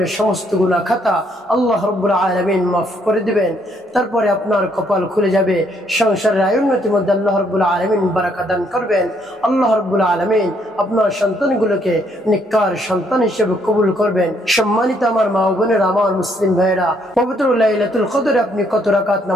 সমস্ত গুনাহ খাতা আল্লাহ রাব্বুল আলামিন মাফ করে দিবেন, তারপরে আপনার কপাল খুলে যাবে, সংসারের আয়োন্নতির মধ্যে আল্লাহ রাব্বুল আলামিন বারাকা দান করবেন। আল্লাহ রাব্বুল আলামিন আপনার সন্তানগুলোকে নেককার সন্তান হিসেবে কবুল করবেন। সম্মানিত আমার মা ও বোনেরা, আমার মুসলিম ভাইরা, পবিত্র লাইলাতুল কদরে আপনি কত রাকাত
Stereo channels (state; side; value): normal; both; correlation 0.70